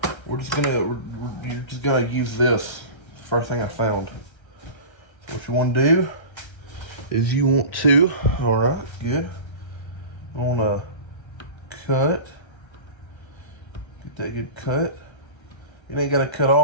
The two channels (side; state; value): right; late; 1.3 ms